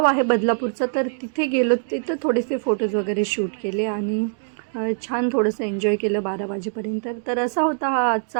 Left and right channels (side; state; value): left; silent; 62 dB below the other